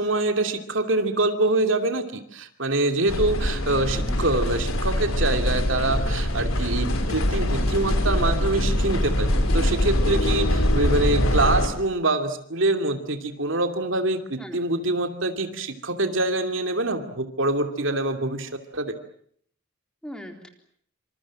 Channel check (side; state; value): both; normal; correlation 0.26